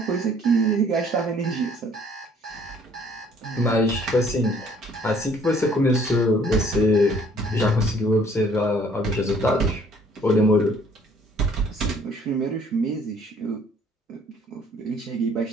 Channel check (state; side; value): normal; both; correlation 0.59